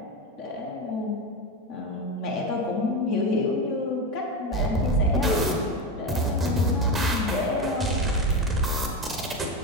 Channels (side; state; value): both; normal; correlation 0.17